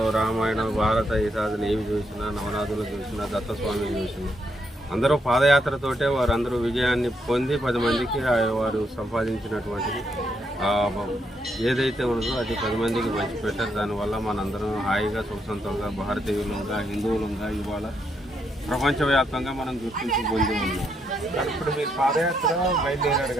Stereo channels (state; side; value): normal; both; correlation 0.77